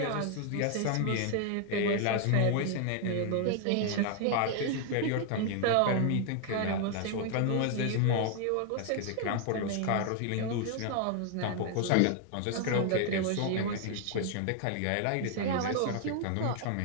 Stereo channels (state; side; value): different; both; correlation 0.00